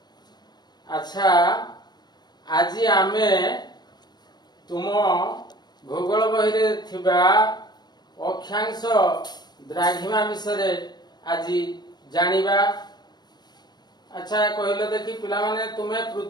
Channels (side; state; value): right; late; 0.20 ms